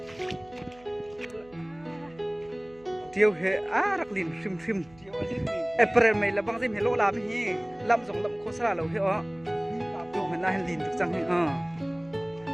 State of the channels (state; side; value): noise; right; hum, 26 dB below the sound